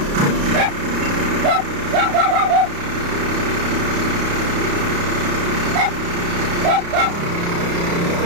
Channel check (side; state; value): left; late; 35 ms